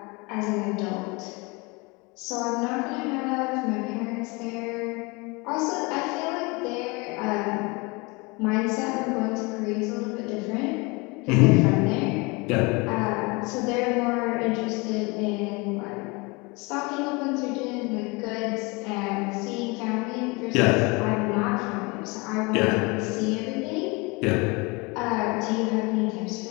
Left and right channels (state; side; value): quieter; right; 27.0 dB